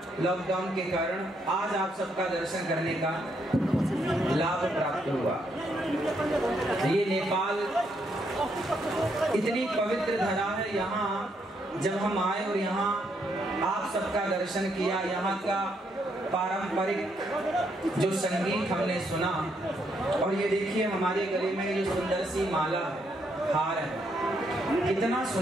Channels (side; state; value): both; normal; correlation 0.75